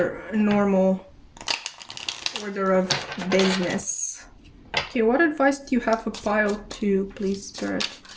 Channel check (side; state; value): both; identical; correlation 1.00